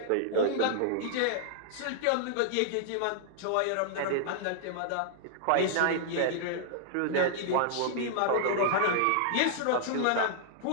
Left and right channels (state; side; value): different; both; correlation -0.01